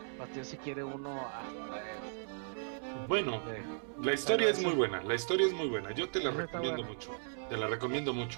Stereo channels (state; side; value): silent; left; digital silence